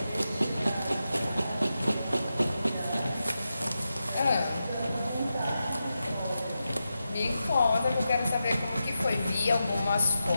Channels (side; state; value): both; inverted; correlation -0.89